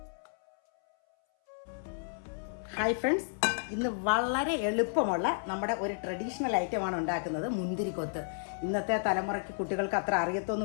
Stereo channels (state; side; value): silent; right; 56 dB below the other